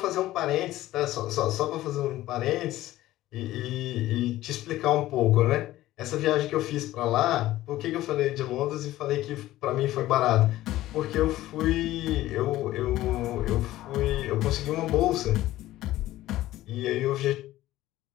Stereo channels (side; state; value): right; quieter; 15.4 dB